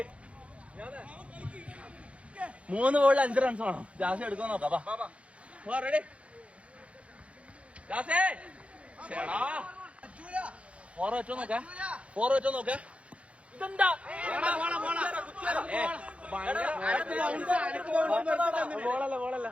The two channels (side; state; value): left; late; 0.062 ms